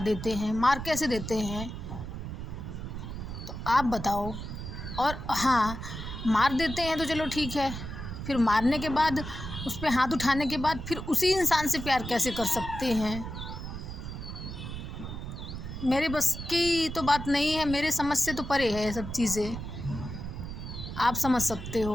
देते हैं, मार कैसे देते हैं, तो आप बताओ। और हाँ, मार देते हैं तो चलो ठीक है, फिर मारने के बाद उस पे हाथ उठाने के बाद फिर उसी इंसान से प्यार कैसे कर सकते हैं। मेरे बस की तो बात नहीं है, मेरे समझ से तो परे है ये सब चीज़ें। आप समझ सकते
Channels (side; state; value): right; noise; rumble, 7 dB below the sound